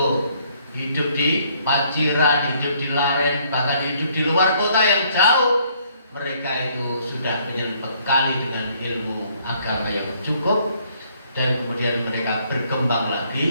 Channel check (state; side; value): inverted; both; correlation -0.66